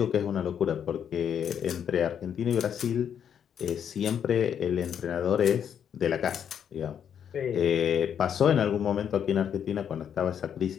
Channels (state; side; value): quieter; right; 8.5 dB